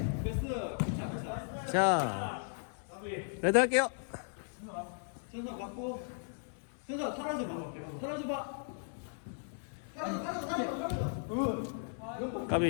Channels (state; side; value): silent; right; 54 dB below the other